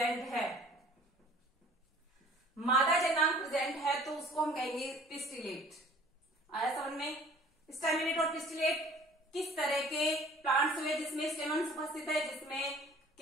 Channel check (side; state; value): both; normal; correlation 0.51